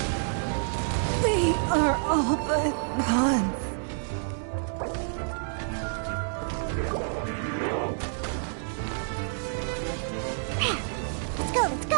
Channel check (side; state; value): left; silent; digital silence